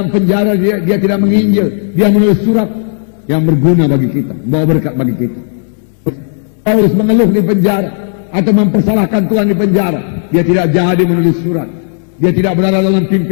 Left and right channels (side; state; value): right; silent; digital silence